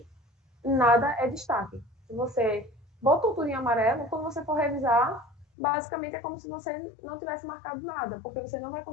nada é destaque. Se você botou tudo em amarelo, quando você for revisar, basicamente é como se você não tivesse marcado nada, porque você não vai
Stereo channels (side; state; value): right; drops out; at 5.5 s